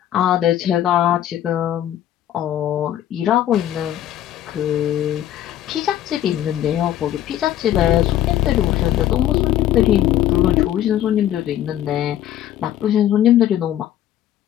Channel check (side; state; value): right; quieter; 12.0 dB